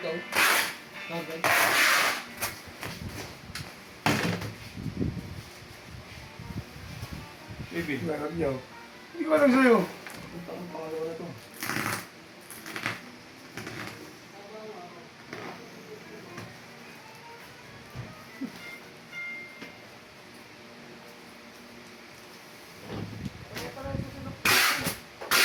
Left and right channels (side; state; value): both; identical; correlation 1.00